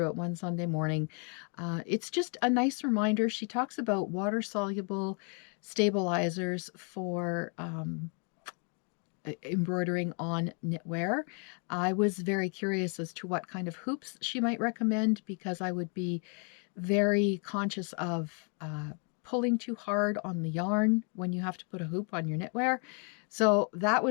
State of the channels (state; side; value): quieter; right; 39.4 dB